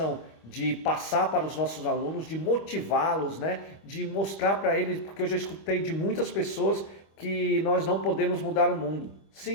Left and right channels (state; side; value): late; right; 25 ms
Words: de passar para os nossos alunos, de motivá-los, de mostrar para eles, porque eu já escutei de muitas pessoas que nós não podemos mudar o mundo.